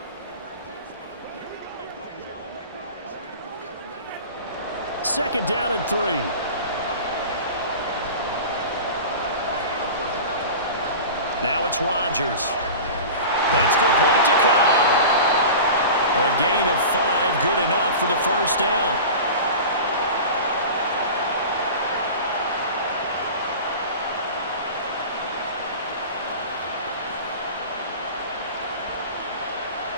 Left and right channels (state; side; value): inverted; both; correlation -0.34